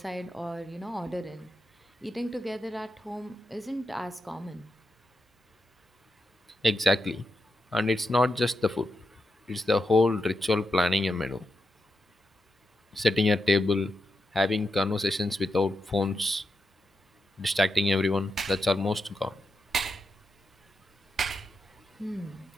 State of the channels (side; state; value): both; normal; correlation 0.85